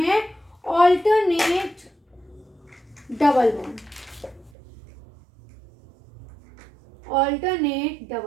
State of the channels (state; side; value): drops out; left; at 4.5 s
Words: alternate double bond, alternate